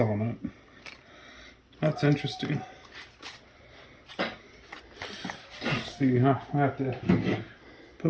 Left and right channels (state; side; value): identical; both; correlation 1.00